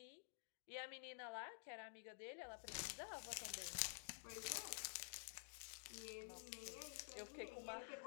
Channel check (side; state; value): right; silent; digital silence